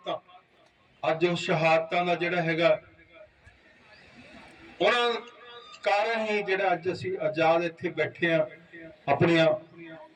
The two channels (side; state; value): both; identical; correlation 1.00